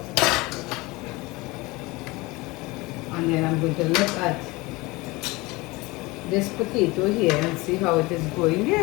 And then I'm going to look at this potato here and see how it is going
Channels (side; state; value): right; quieter; 22.7 dB